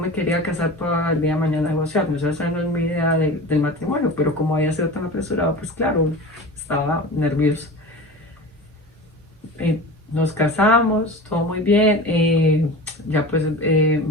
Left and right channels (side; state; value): both; normal; correlation 0.33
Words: quería casar para el día de mañana negociar, o sea, esa no es mi idea del matrimonio, pero como había sido tan apresurado, pues claro, estaba nerviosa. Nos casamos, todo muy bien. Ya pues